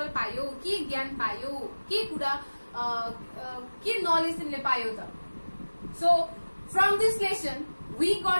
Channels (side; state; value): both; inverted; correlation -1.00